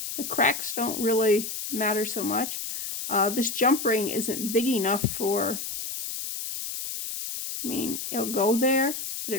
the cracks don't really matter so much. This jump ring isn't big enough for, I mean, it'll go there, but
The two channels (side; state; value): left; noise; hiss, 6 dB below the sound